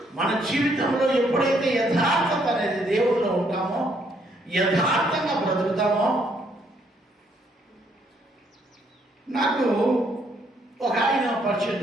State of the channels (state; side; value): normal; both; correlation 0.70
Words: మన జీవితంలో ఎప్పుడైతే యథార్థత అనేది దేవుడిలో ఉంటామో, యథార్థంగా బ్రతుకుతామో. నాకు ఒక ఆయన పరిచయం